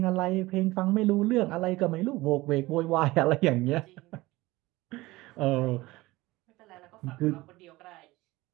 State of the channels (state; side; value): quieter; left; 19.7 dB